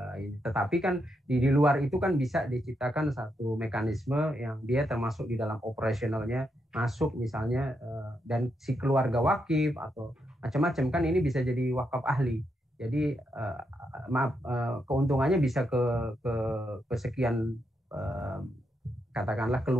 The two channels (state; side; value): normal; both; correlation 0.81